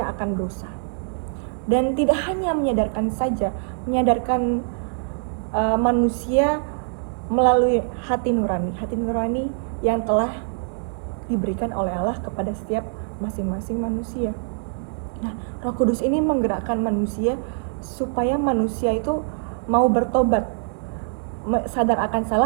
akan dosa. Dan tidak hanya menyadarkan saja, menyadarkan manusia melalui hati nurani yang telah diberikan oleh Allah kepada setiap masing-masing manusia. Nah, Roh Kudus ini menggerakkan manusia supaya manusia itu mau bertobat, sadar akan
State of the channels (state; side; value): silent; left; digital silence